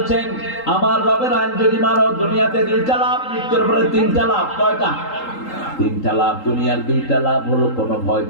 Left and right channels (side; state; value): right; late; 3.8 ms